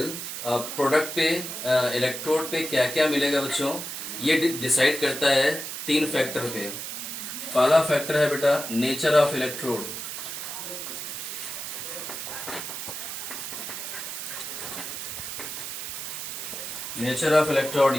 product पे इलेक्ट्रोड पे क्या क्या मिलेगा बच्चों, ये डिसाइड करता है 3 फैक्टर पे। पहला फैक्टर है बेटा nature of electrode. Nature of electrode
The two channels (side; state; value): right; noise; hiss, 6 dB below the sound